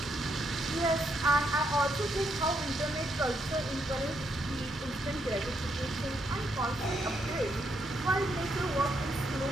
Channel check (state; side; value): normal; both; correlation 0.77